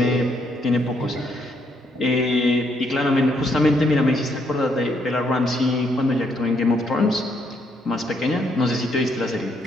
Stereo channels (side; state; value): both; normal; correlation 0.73